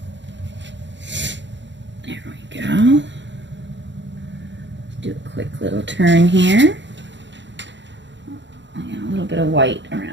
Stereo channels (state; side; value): late; left; 0.53 ms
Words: There we go. Let's do a quick little turn here. I got a little bit of white